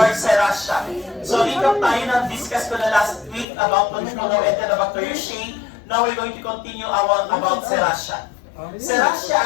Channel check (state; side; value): drops out; right; at 3.5 s